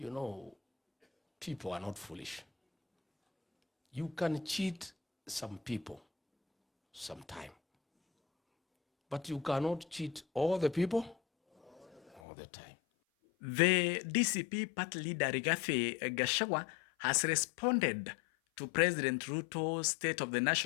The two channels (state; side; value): drops out; right; at 12.2 s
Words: know, people are not foolish. You can cheat some people sometime, but you cannot cheat all the people all the time. The DCP party leader Rigathi Gachagua has responded to President Ruto's State of the